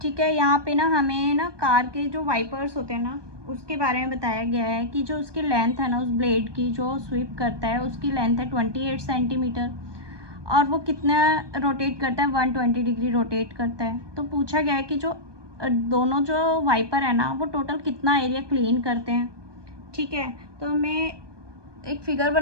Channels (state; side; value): late; left; 1.2 ms